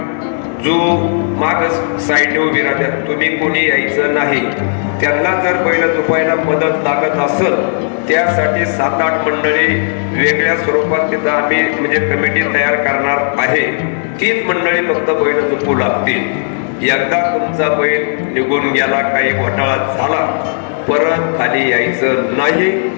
जो माग साईडने उभी राहतात, तुम्ही कोणी यायचं नाही। त्यांना जर बैल झोपायला मदत लागत असेल, त्यासाठी 7-8 मंडळी वेगळ्या स्वरूपात तिथं आम्ही म्हणजे कमिटी तयार करणार आहे। तीच मंडळी फक्त बैल झोपू लागतील। एकदा तुमचा बैल निघून गेला, काही घोटाळा झाला, परत खाली यायचं नाही,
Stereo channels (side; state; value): right; silent; digital silence